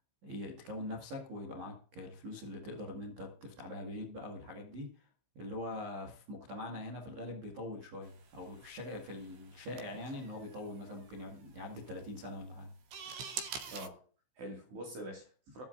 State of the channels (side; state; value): left; late; 16 ms